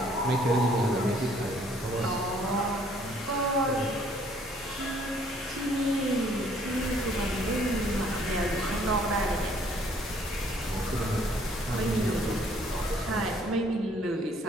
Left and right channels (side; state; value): both; normal; correlation 0.62